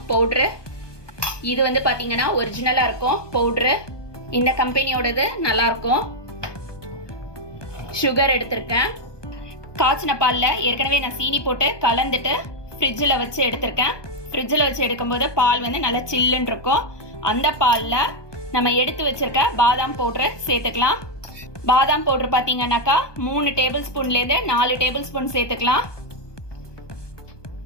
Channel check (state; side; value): late; right; 1.2 ms